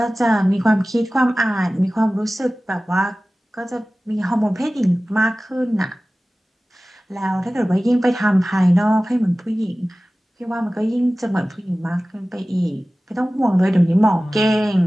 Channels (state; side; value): normal; both; correlation 0.97